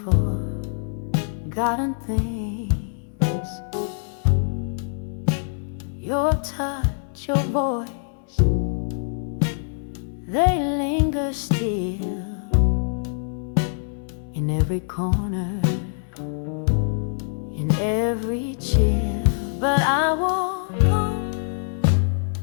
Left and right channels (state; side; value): silent; right; 62 dB below the other